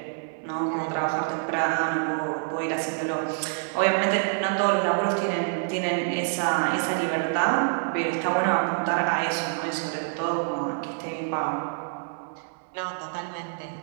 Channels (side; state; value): left; silent; 57 dB below the other